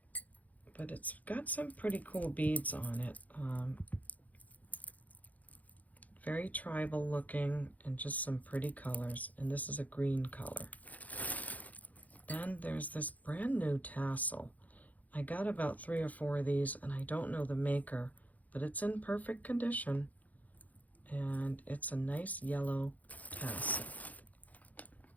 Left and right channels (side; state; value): right; late; 0.077 ms